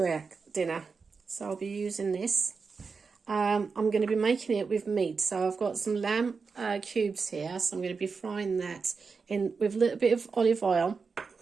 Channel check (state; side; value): quieter; left; 4.9 dB